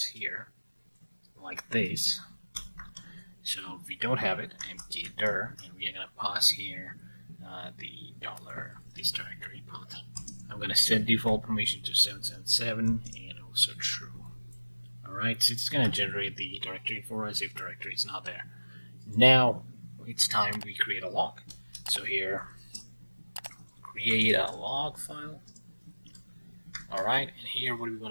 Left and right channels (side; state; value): both; inverted; correlation -1.00